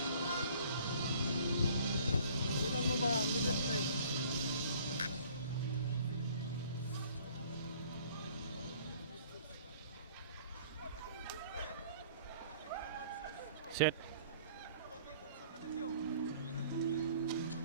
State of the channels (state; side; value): inverted; both; correlation -0.54